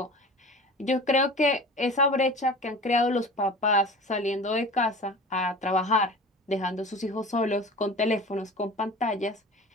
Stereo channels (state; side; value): normal; both; correlation 0.38